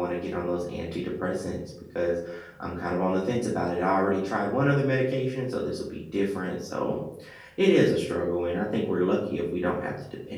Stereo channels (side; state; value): both; identical; correlation 1.00